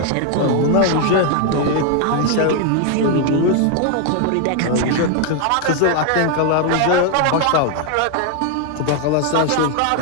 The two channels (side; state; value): both; different; correlation 0.00